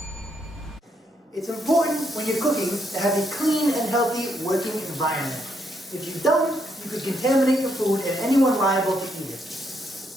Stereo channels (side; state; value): both; normal; correlation 0.76